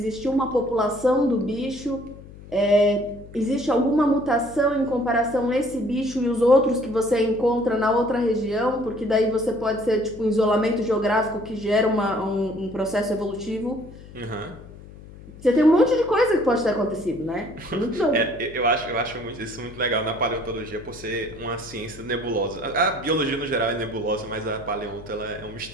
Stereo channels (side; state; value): left; noise; hum, 18 dB below the sound